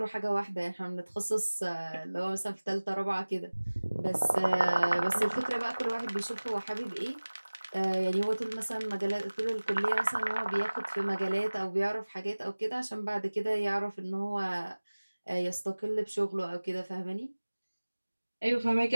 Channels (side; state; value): both; inverted; correlation -1.00